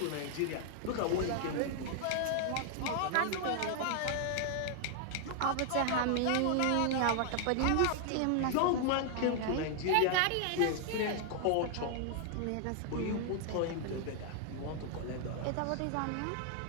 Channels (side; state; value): both; different; correlation 0.00